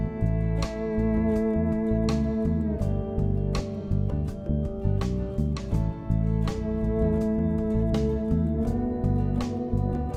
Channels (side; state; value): both; identical; correlation 1.00